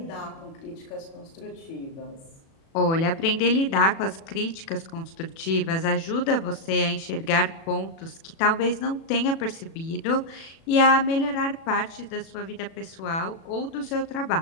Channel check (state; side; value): late; right; 36 ms